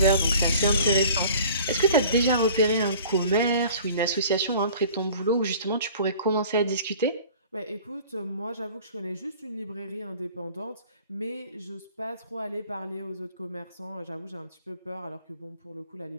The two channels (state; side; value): inverted; both; correlation -0.47